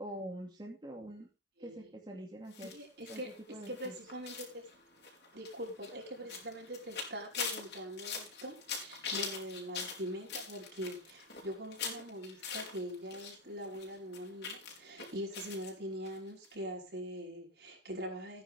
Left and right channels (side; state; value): both; normal; correlation 0.06